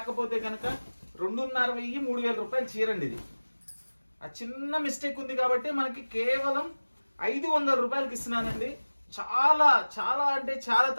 కనుక 2,500 3,000 రూపాయలు చీరండి ఇది. ఆ చిన్న మిస్టేక్ ఉంది కాబట్టి మనకి కేవలం 500 రూపాయలకి ఇస్తున్నానండి. చాలా చాలా అంటే చాలా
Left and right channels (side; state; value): both; inverted; correlation -1.00